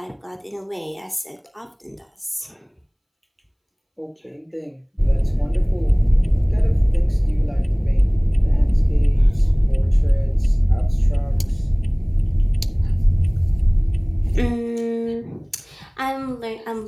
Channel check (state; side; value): identical; both; correlation 1.00